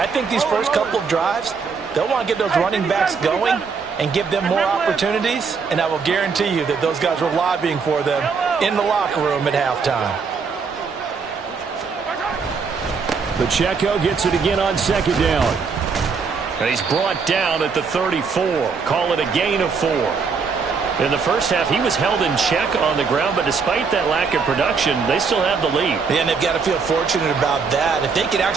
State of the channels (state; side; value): quieter; left; 5.3 dB